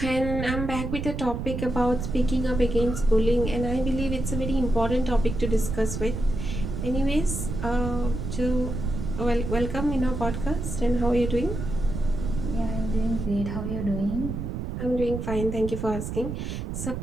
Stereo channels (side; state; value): right; noise; rumble, 4 dB below the sound